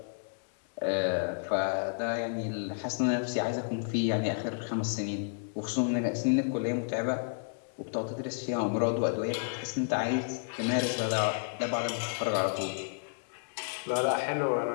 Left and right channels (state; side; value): silent; right; digital silence